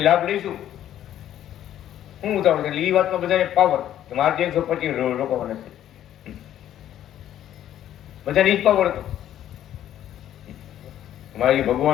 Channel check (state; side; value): quieter; right; 11.5 dB